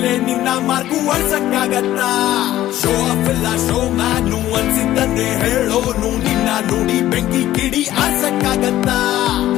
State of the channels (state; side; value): quieter; right; 14.0 dB